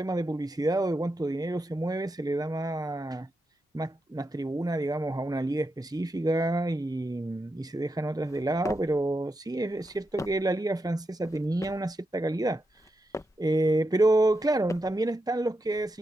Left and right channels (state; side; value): normal; both; correlation 0.86